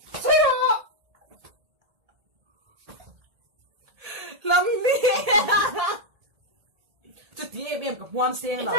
所以我。lâm đi chút tí em gặp hoan sen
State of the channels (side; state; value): left; late; 1.8 ms